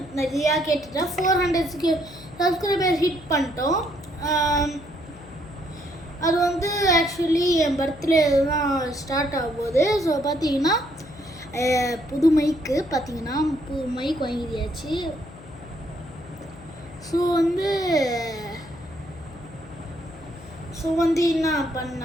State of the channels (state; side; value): noise; left; hum, 19 dB below the sound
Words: நிறையா கேட்டுட்டேன். 400 சப்ஸ்கிரைபர் ஹிட் பண்ணிட்டோம். அது ஆக்சுவலி என் பர்த்டே தான் ஸ்டார்ட் ஆகும் போது. ஸோ பார்த்தீங்கன்னா புது மைக்கு வாங்கியாச்சு. ஸோ என்ன